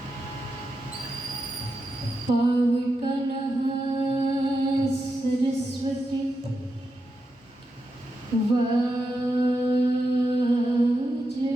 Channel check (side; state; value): both; normal; correlation 0.87